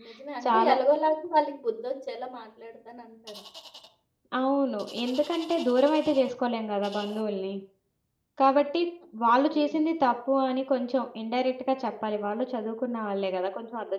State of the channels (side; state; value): both; identical; correlation 1.00